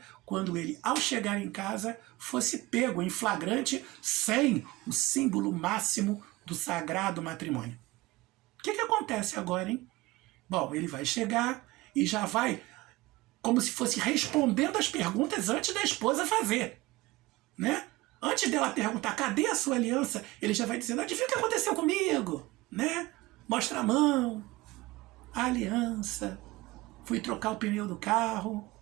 quando ele, ao chegar em casa, fosse pego em flagrante sem o símbolo máximo do sagrado matrimônio. O que acontece agora, hein? Bom, ele vai chegar e já vai como se fosse respondendo as perguntas antes da esposa fazer, né? Antes dela perguntar, cadê a sua aliança? Ele já vai dizendo, adivinha o que aconteceu comigo? Né? Mostra a mão, a aliança, fui trocar o pneu do carro,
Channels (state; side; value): quieter; left; 20.1 dB